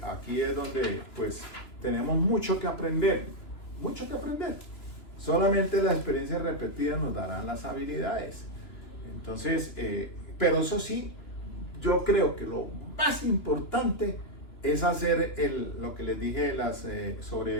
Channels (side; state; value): right; late; 2.9 ms